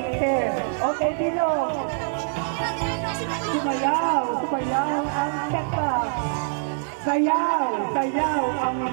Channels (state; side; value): silent; left; 56 dB below the other